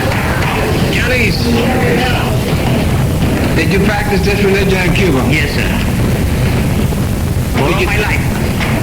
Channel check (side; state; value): both; identical; correlation 1.00